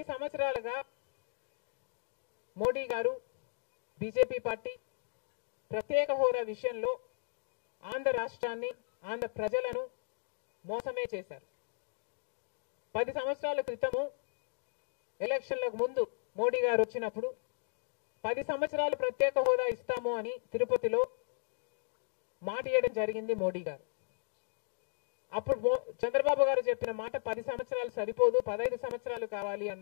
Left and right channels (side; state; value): right; silent; digital silence